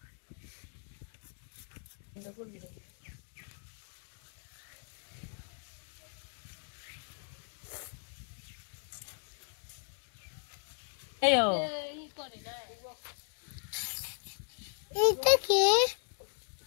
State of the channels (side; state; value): right; silent; 53 dB below the other